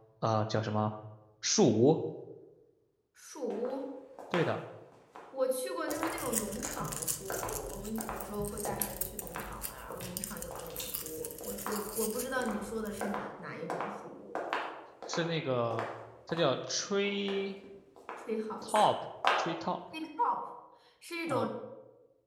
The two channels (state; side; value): identical; both; correlation 1.00